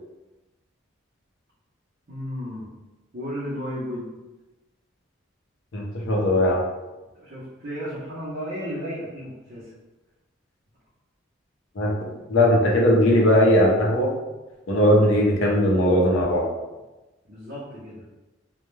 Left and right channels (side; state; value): both; normal; correlation 0.35